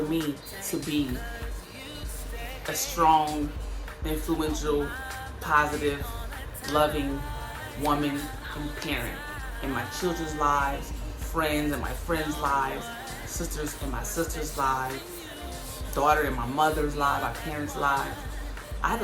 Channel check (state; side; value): identical; both; correlation 1.00